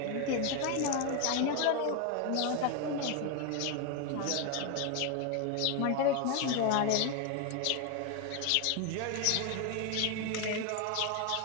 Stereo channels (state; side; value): different; both; correlation 0.01